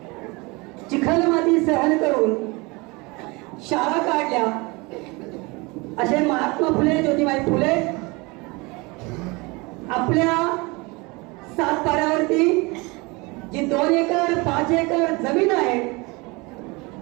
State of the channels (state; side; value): quieter; left; 25.8 dB